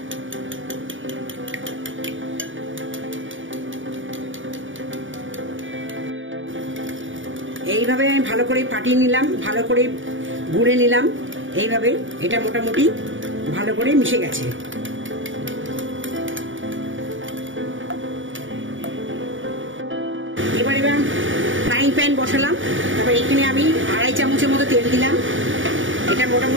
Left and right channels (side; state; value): left; late; 0.56 ms